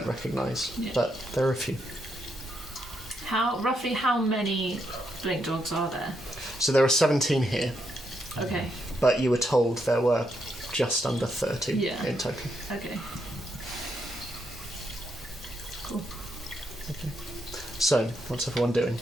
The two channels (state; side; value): normal; both; correlation 0.79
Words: recognise, but there are a few. Roughly how many blink dogs are there? So there are 17 here, Okay. but you were told there were just under 30 Yeah. in total. Okay. Cool. So, what's everyone doing?